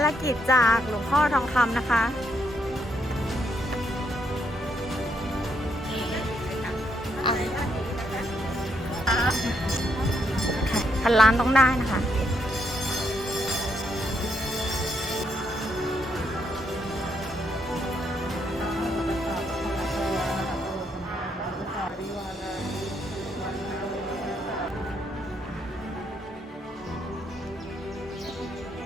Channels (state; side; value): normal; both; correlation 0.75